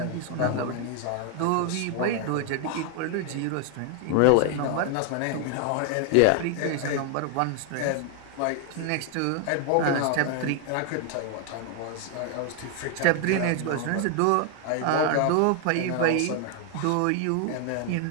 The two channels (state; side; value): different; both; correlation 0.00